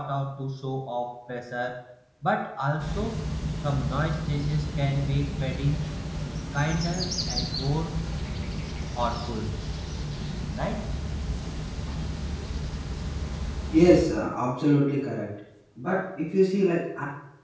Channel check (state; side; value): identical; both; correlation 1.00